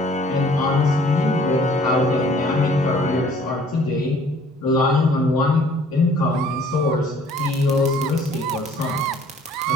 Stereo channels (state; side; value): normal; both; correlation 0.56